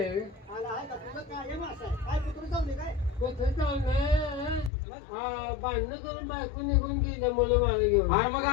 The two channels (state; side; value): drops out; right; at 4.7 s